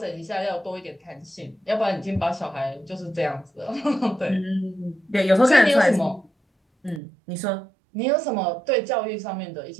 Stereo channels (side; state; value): left; drops out; at 7.0 s